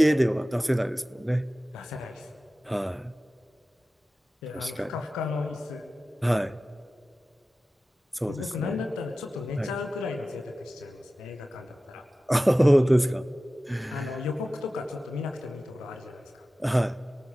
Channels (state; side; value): normal; both; correlation 0.95